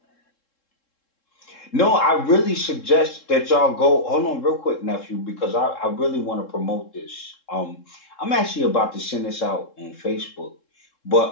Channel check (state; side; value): late; right; 3.7 ms